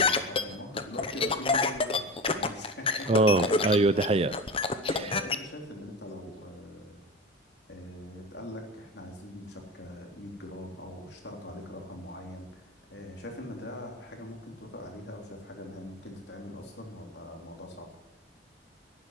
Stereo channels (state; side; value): normal; both; correlation 0.25